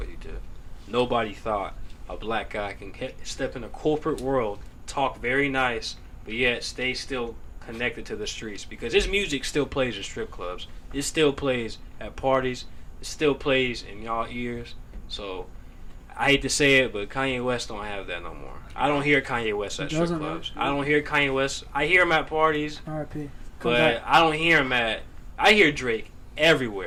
he did. Nobody thought a black guy can step in a corporate world, talk very nice, but yet stay still connected to the streets because his music still plays in strip clubs. It still plays at parties. It still plays in y'all ears. So I hate to say it, but Kanye West don't have that no more. I don't hear Kanye West at strip clubs. I don't hear Kanye West. I hear him at parties, R.I.P. but I don't hear him I hear Drake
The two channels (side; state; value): both; identical; correlation 1.00